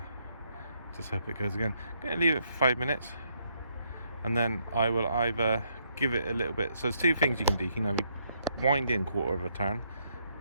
just hope it goes again. I'm going to leave it for 5 minutes, and then I will either give it a little bit. So there's two things you can do. You can either wind in quarter of a turn,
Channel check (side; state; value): both; inverted; correlation -0.73